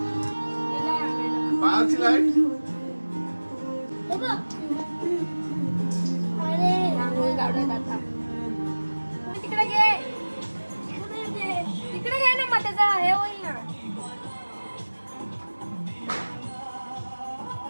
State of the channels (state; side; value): inverted; both; correlation -1.00